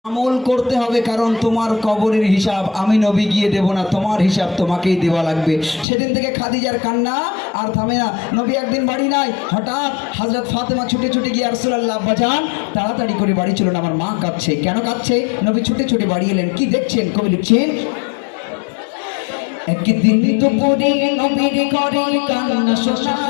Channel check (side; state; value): right; drops out; at 5.9 s